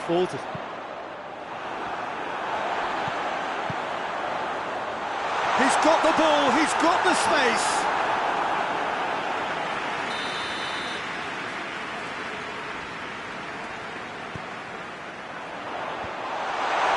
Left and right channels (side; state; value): both; identical; correlation 1.00